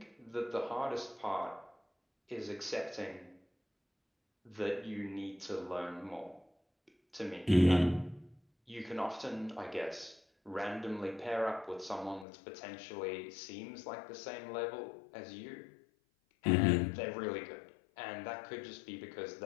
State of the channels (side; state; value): right; drops out; at 12.2 s